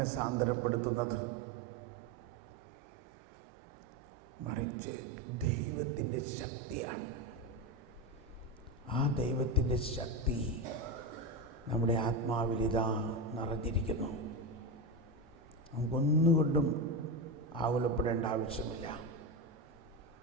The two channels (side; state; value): both; normal; correlation 0.15